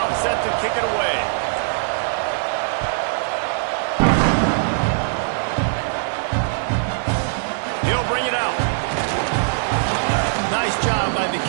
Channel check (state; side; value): silent; left; digital silence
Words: set to kick it away. bring it out. Nice job by the